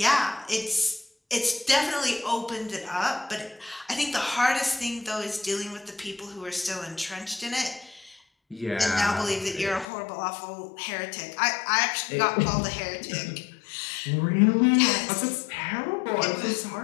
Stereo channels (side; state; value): right; drops out; at 9.9 s